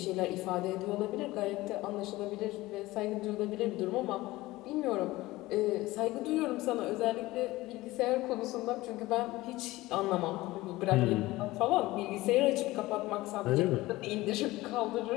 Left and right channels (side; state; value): right; quieter; 18.8 dB